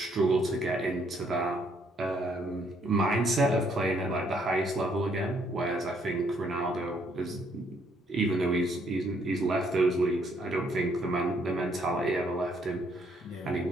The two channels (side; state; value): both; normal; correlation 0.69